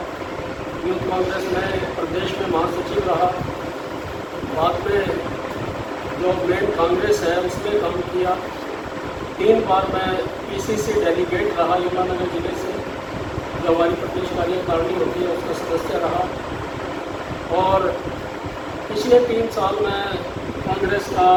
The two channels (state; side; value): identical; both; correlation 1.00